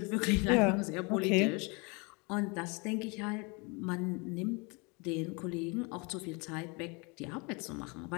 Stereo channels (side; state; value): right; quieter; 29.9 dB